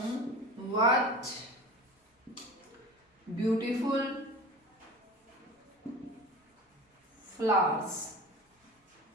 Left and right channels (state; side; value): normal; both; correlation 0.35